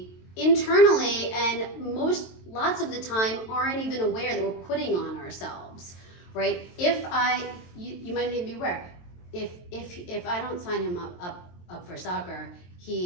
internally and lots of the time aren't even aware that we're putting on ourselves, right? You might even be aware, if I don't sign him up for soccer,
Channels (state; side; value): late; right; 22 ms